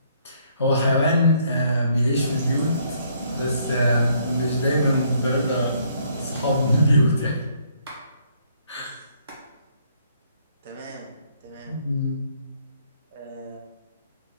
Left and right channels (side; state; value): both; inverted; correlation -0.67